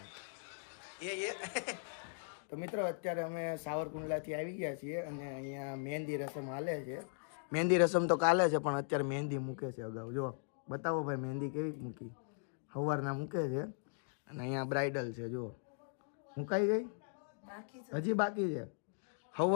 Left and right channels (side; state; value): right; silent; digital silence